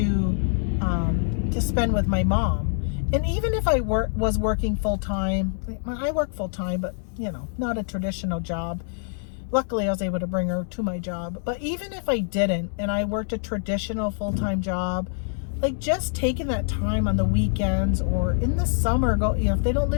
spend with my mom. And even if I was working full-time, I work full-time, but, not a traditional job. Luckily, I was able to bring her to my job. But even if I didn't, and I worked a traditional full-time job, like, just taking that time on the weekends or in the summer, if they don't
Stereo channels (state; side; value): silent; right; digital silence